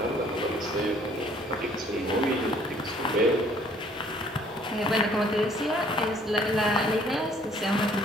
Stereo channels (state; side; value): normal; both; correlation 0.59